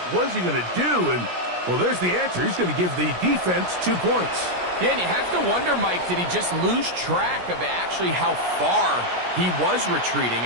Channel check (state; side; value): late; left; 17 ms